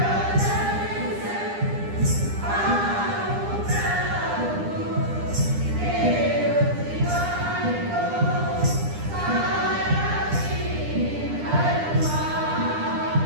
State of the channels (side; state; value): left; late; 9.9 ms